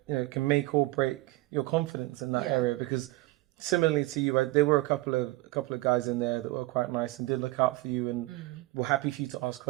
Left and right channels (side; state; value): left; quieter; 19.9 dB